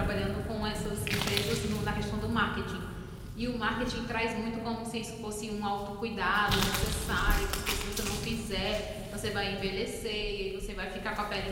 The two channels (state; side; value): identical; both; correlation 1.00